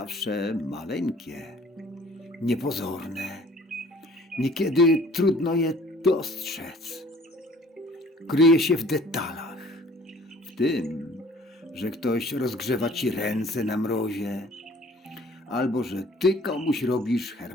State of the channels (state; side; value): normal; both; correlation 0.53